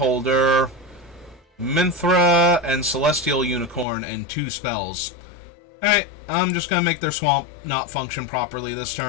Minthra, and Celestial Unicorn, and 2 spells. Alright, I'm just going to make their swamp not function properly this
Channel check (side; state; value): right; drops out; at 3.9 s